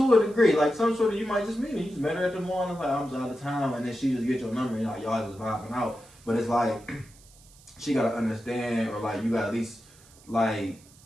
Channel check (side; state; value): right; noise; hiss, 25 dB below the sound